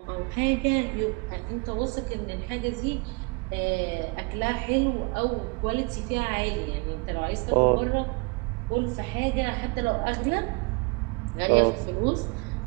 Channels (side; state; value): left; quieter; 30.1 dB